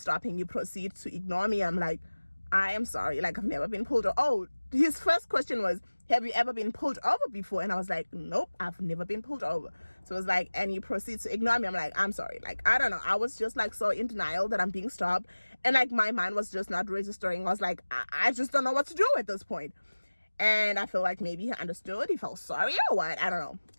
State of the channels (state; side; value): inverted; both; correlation -1.00